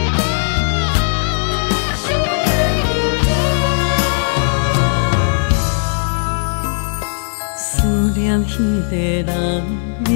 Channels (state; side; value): silent; right; digital silence